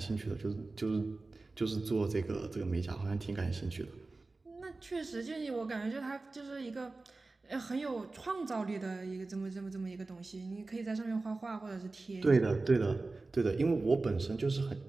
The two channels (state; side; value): quieter; left; 3.4 dB